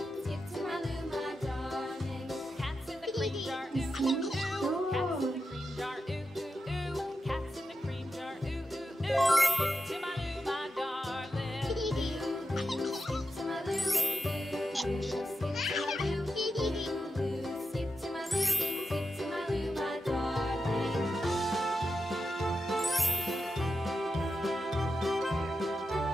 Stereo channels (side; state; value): both; normal; correlation 0.88